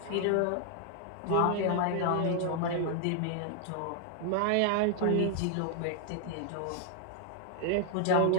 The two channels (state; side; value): different; both; correlation 0.00